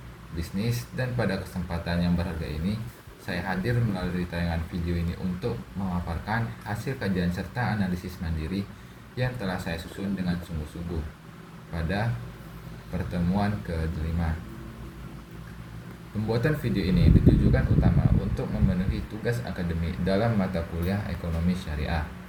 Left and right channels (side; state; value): both; identical; correlation 1.00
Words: dan pada kesempatan yang berharga ini saya hadir melalui tayangan video ini untuk memaparkan hasil kajian serta analisis mandiri yang telah saya susun dengan sungguh-sungguh pada pertemuan ke-5. Pembuatan video ini ditujukan utama untuk memenuhi tugas akademik dalam mata kuliah ekonomi syariah.